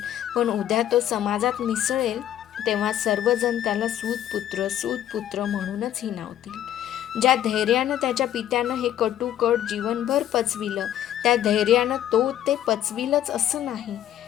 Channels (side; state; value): right; quieter; 11.5 dB